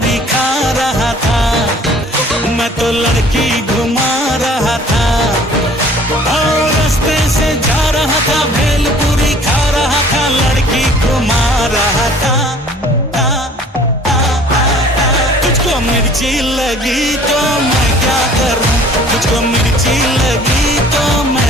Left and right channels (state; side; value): normal; both; correlation 0.52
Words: खा रहा था, मैं तो लड़की घुमा रहा था। और रास्ते से जा रहा था, भेलपुरी खा रहा था, लड़की घुमा रहा था। तुझको मिर्ची लगी तो मैं क्या करूं, तुझको मिर्ची लगी तो